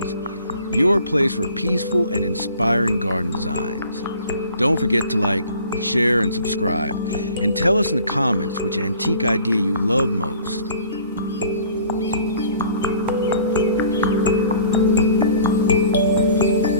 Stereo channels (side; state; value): both; inverted; correlation -0.51